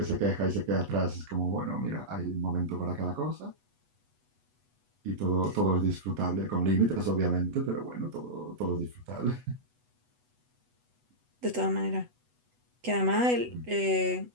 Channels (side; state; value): left; late; 8.1 ms